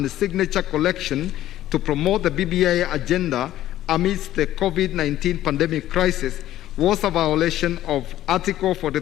signature collection to promote the BBI agenda amidst the COVID-19 pandemic crisis, was a violation of Article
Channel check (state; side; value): quieter; right; 13.5 dB